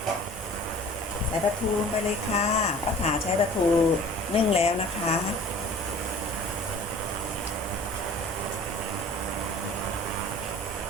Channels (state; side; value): normal; both; correlation 0.46